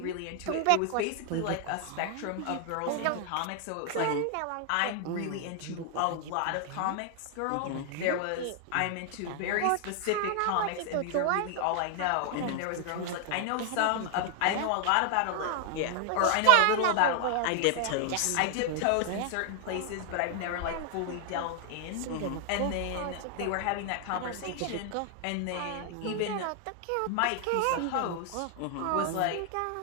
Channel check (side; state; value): both; different; correlation 0.00